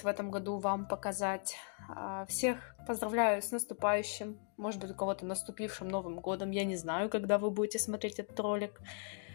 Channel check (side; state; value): right; silent; 53 dB below the other